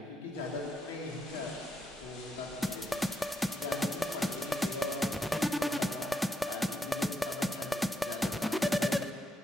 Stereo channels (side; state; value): both; normal; correlation 0.79